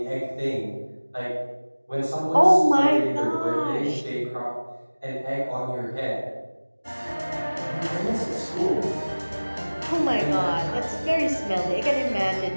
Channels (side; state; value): both; inverted; correlation -1.00